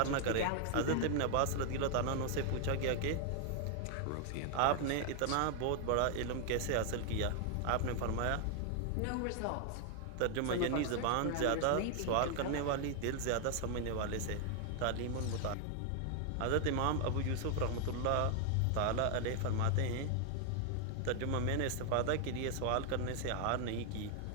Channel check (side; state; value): both; different; correlation 0.00